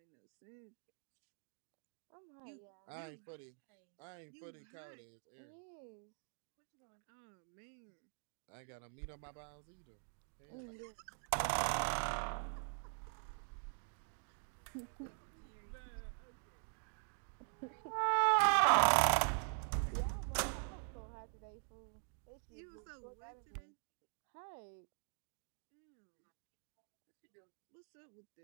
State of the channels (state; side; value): silent; left; digital silence